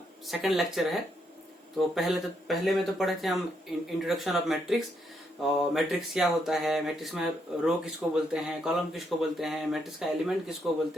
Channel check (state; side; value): normal; both; correlation 0.77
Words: सेकंड लेक्चर है। तो पहले में तो पढ़े थे हम इंट्रोडक्शन ऑफ मैट्रिक्स। और मैट्रिक्स क्या होता है, मैट्रिक्स में रो किसको बोलते हैं, कॉलम किसको बोलते हैं, मैट्रिक्स का एलिमेंट किसको बोलते